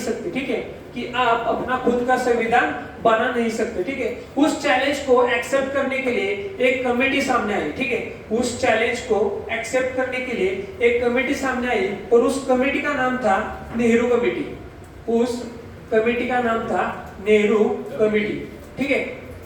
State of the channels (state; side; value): identical; both; correlation 1.00